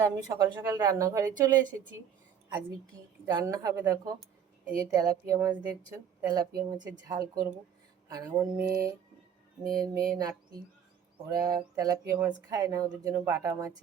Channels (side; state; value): left; quieter; 8.2 dB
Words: আমি সকাল সকাল রান্নাঘরে চলে এসেছি। আজকে কি রান্না হবে দেখো। এই যে তেলাপিয়া মাছ দেখছো, তেলাপিয়া মাছের ঝাল করব। আর আমার মেয়ের মেয়ে নাতি, ওরা তেলাপিয়া মাছ খায় না, ওদের জন্য বাটা মাছ